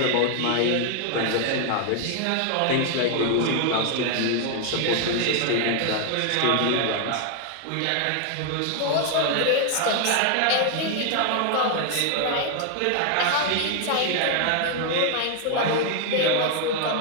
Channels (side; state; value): both; different; correlation 0.00